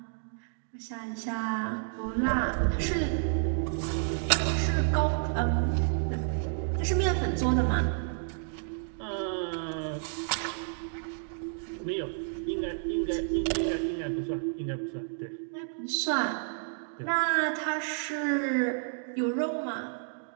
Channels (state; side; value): silent; left; digital silence